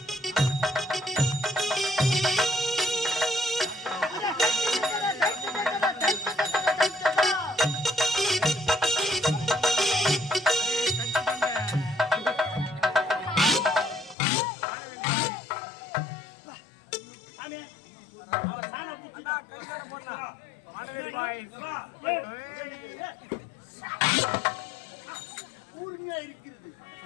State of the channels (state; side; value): drops out; right; at 14.2 s